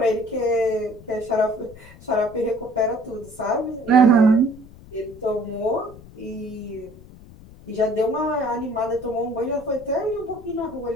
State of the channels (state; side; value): noise; left; rumble, 20 dB below the sound